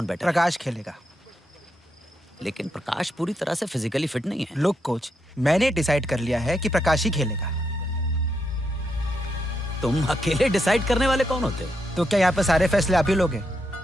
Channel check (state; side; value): normal; both; correlation 0.81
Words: बेटर? प्रकाश खेलेगा। लेकिन प्रकाश पूरी तरह से फिजिकली फिट नहीं है। लुक कोच, मैंने डिसाइड कर लिया है कि प्रकाश ही खेलेगा। तुम अकेले डिसाइड करने वाले कौन होते हो? तो क्या यहाँ पे सारे फैसले आप ही लोगे?